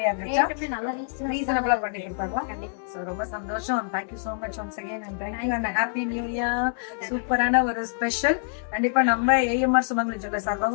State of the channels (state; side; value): silent; right; digital silence